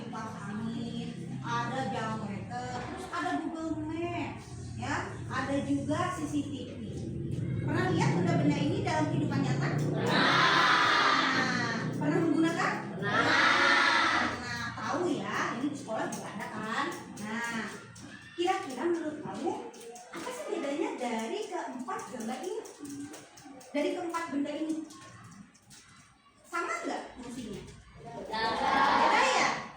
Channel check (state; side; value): identical; both; correlation 1.00